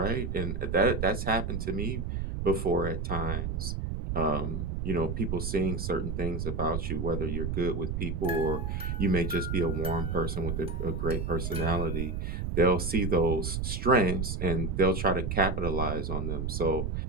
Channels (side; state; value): right; noise; rumble, 3 dB below the sound